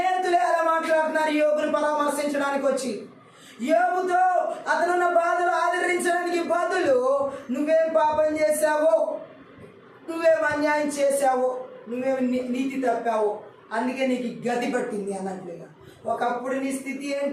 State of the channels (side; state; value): both; identical; correlation 1.00